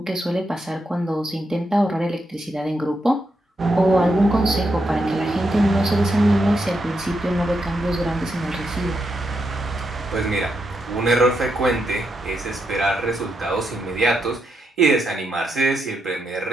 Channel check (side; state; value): both; normal; correlation 0.82